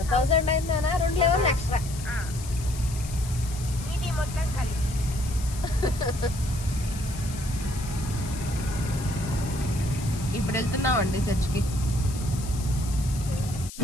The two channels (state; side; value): noise; left; hiss, 13 dB below the sound